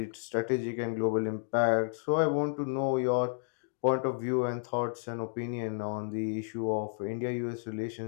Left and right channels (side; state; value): right; silent; digital silence